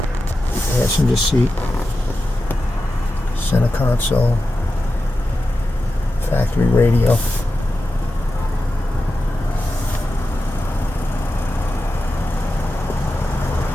passenger seat, center console, factory radio,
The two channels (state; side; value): normal; both; correlation 0.91